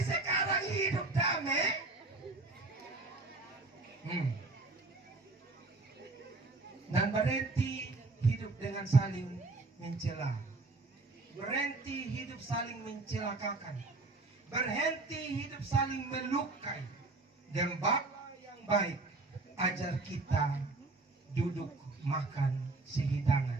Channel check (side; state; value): left; quieter; 3.3 dB